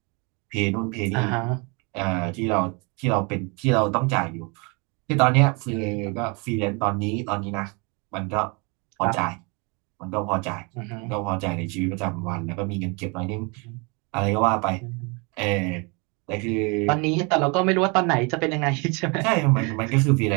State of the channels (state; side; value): quieter; left; 30.7 dB